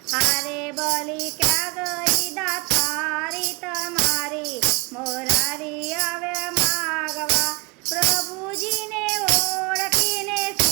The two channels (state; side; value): quieter; left; 25.1 dB